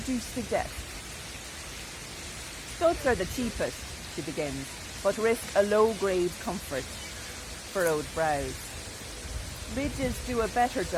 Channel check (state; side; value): identical; both; correlation 1.00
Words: you suggest? Studs are the cheapest, she begins, but risk a low-grade comfort. Furrowed brows. Ridges do a better